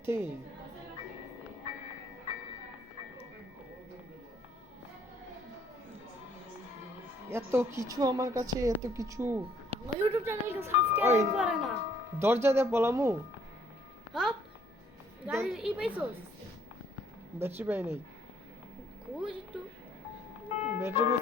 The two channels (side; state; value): both; normal; correlation 0.64